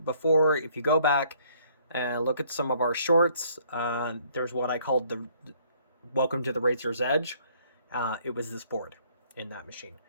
If you go back and look at some of our shorts, there's what I called the Welcome to the Razer's Edge. It was this board in that machine.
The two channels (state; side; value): inverted; both; correlation -0.62